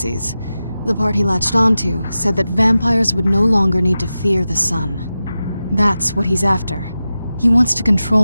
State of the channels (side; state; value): both; inverted; correlation -0.93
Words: The part he latched onto said that vampires would no longer need to fear the sun. That's what he's after. He wants to